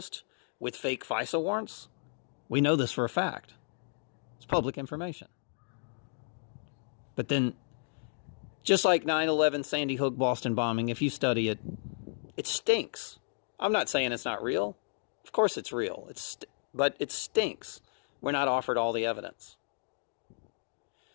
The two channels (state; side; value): silent; right; digital silence